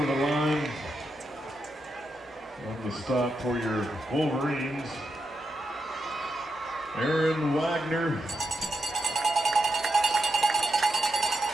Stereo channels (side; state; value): both; normal; correlation 0.85